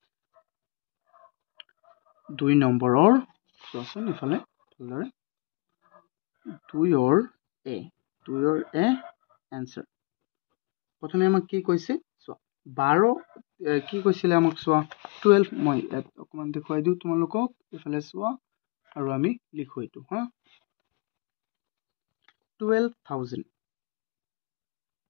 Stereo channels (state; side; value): quieter; right; 27.8 dB